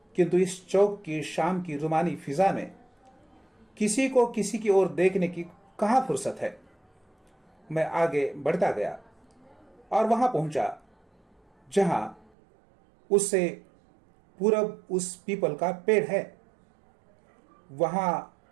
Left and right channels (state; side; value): drops out; left; at 12.3 s